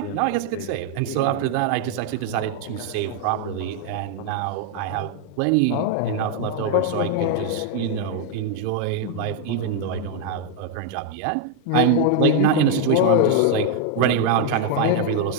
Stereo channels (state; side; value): different; both; correlation 0.00